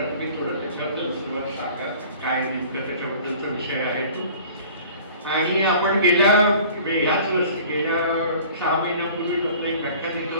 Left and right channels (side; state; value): both; inverted; correlation -0.47